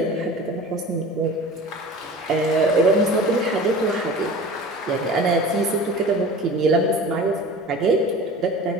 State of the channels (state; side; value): normal; both; correlation 0.38